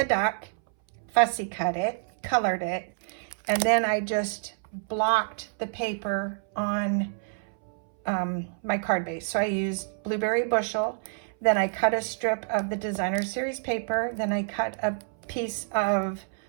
duck, fussy cut it, colored it, and then I just blocked the paper on my card base. So I used Blueberry Bushel, then I cut a strip of the Designer Series paper, then I cut a piece of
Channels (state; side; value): silent; left; 59 dB below the other